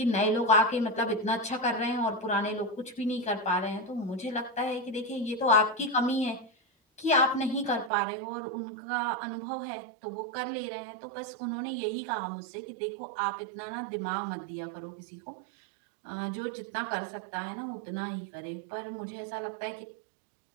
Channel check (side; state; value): left; drops out; at 7.9 s